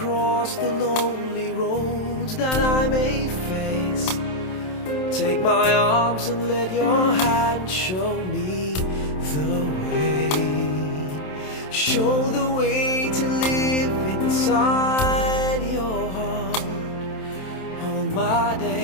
the lonely roads that I may face. Take my arms and let your hand show me the way. Show the way to live inside your heart all my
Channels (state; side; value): late; right; 27 ms